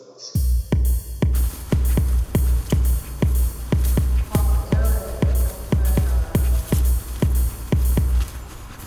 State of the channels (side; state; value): both; identical; correlation 1.00